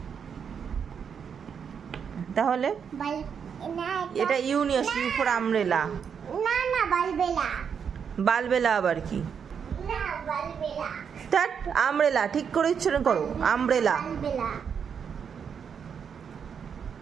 তাহলে এটা ইউ নিয়ে আসো, ইউ ফর আমব্রেলা। না না বালবেলা। বালবেলা আবার কি? না বালবেলা। দ্যাট আমব্রেলা, ঠিক করে উচ্চারণ করো, আমব্রেলা। বালবেলা।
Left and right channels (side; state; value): left; quieter; 7.1 dB